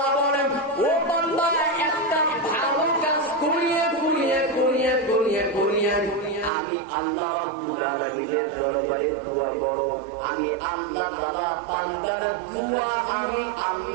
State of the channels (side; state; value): left; drops out; at 6.5 s